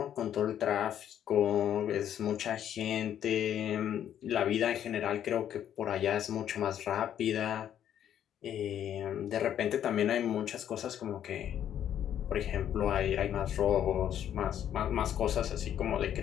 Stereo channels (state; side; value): quieter; right; 10.2 dB